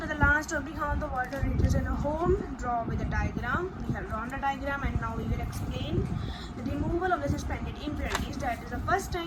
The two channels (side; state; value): both; identical; correlation 1.00